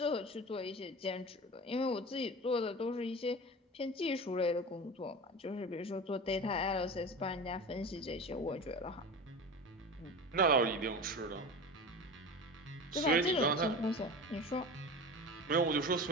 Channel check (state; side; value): normal; both; correlation 0.31